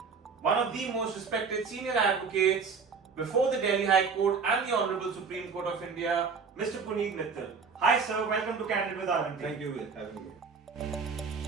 one of the most respected senior advocates before the Delhi High Court and the Honorable Supreme Court of India, Mr. Puneet Mittal. Hi sir, welcome to Candid with RMT. Thank you for having me.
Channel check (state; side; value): quieter; left; 5.4 dB